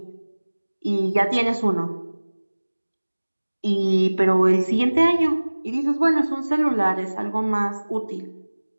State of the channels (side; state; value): both; inverted; correlation -1.00